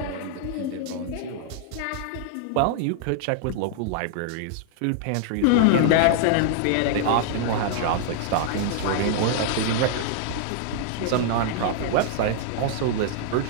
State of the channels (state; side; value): different; both; correlation -0.01